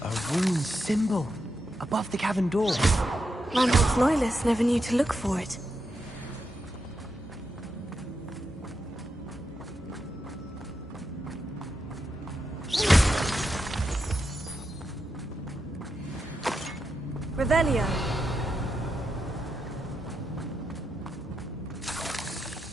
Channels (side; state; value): both; normal; correlation 0.85